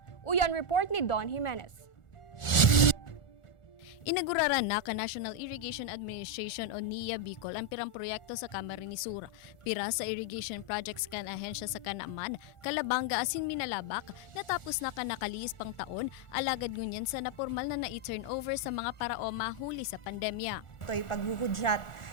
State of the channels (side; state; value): right; late; 1.4 ms